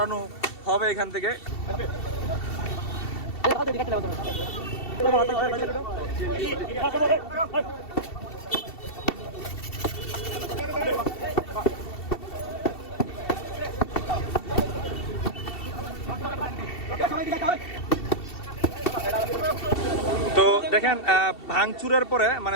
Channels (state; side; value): late; right; 2.7 ms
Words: হবে এখান থেকে। তো দেখেন ভাঙচুরের পরে